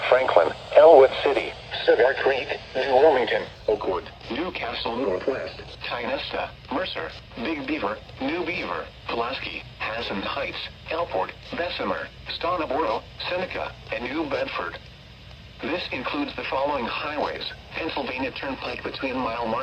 Franklin, Elwood City, Cedar Creek, New Wilmington, Oakwood, Newcastle Northwest, Tynesta, Mercer, Big Beaver, New Beaver, Pulaski, Hassan Heights, Elport, Bessemer, Stoneboro, Seneca, and New Bedford. This includes the following highways: Pennsylvania Turnpike between mile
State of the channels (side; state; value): both; identical; correlation 1.00